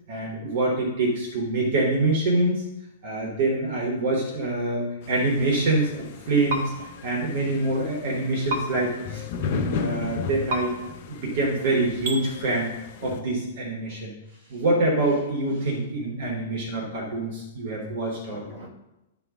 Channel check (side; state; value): both; inverted; correlation -0.33